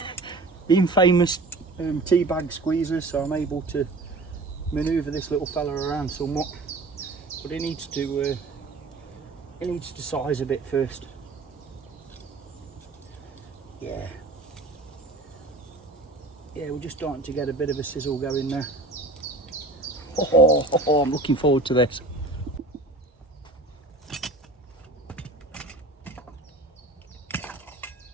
the infamous tea bag squeezers, so I'm able to manoeuvre this little fella around somewhat. But it needs to size a bit first. Yeah, we're just starting to get a bit of a sizzle going there. Oh, I'm looking forward to this.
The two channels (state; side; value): quieter; left; 3.0 dB